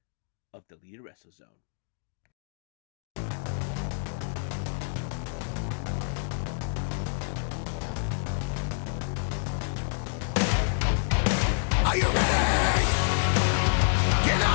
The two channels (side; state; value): right; silent; digital silence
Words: of the Leader Wrestle Zone. Are you ready? Get